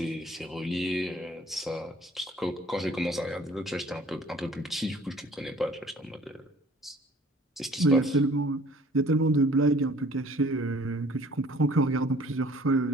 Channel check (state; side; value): normal; both; correlation 0.53